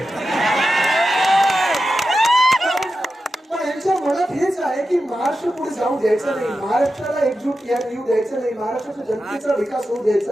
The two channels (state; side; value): normal; both; correlation 0.91